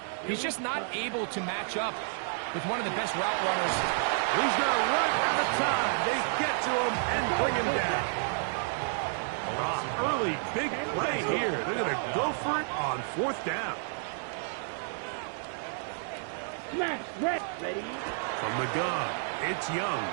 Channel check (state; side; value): silent; left; digital silence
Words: he's just not able to match up with one of the best route runners. He's going to run out of time. They get to him and bring him down. Early big play here. They're going to go for it on fourth down. Smash, ready. From the gun, it's Young.